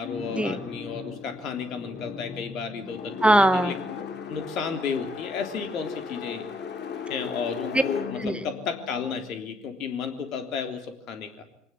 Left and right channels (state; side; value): normal; both; correlation 0.70